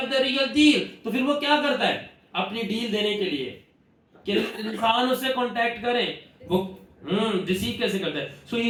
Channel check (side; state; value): both; identical; correlation 1.00